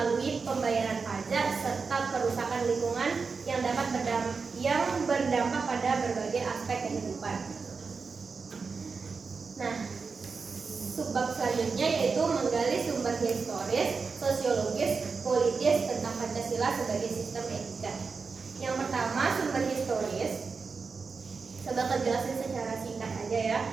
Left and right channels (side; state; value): left; quieter; 4.9 dB